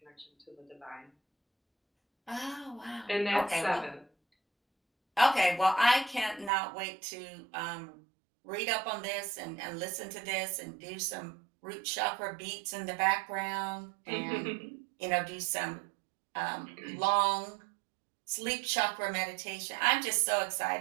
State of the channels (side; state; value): left; drops out; at 6.5 s